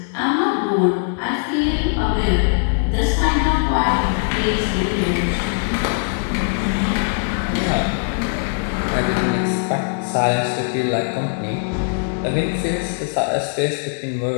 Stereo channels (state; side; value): silent; right; digital silence